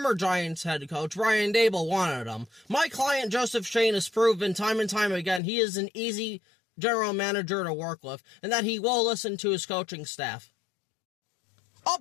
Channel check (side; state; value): right; drops out; at 5.4 s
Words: Giants head coach Brian Daboll wanted him. My client, Joseph Schoen, has proven time and time again he is an easy general manager to work with, and that he will listen to his coaching staff.